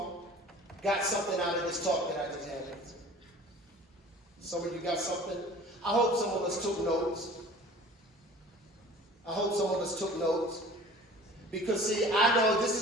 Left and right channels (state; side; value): normal; both; correlation 0.45